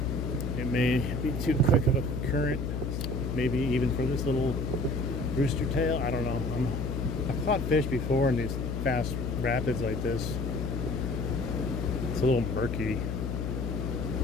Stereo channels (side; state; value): left; noise; hum, 2 dB below the sound